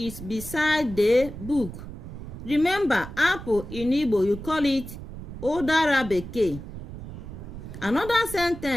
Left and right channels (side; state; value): right; noise; rumble, 11 dB below the sound